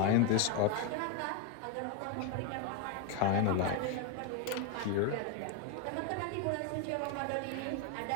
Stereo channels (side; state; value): both; different; correlation 0.02